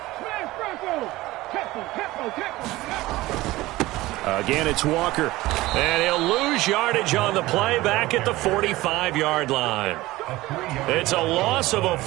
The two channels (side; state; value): left; quieter; 18.4 dB